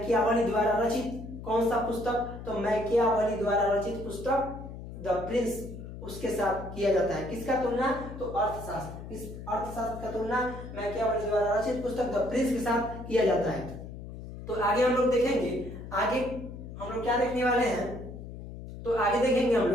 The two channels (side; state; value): left; noise; hum, 11 dB below the sound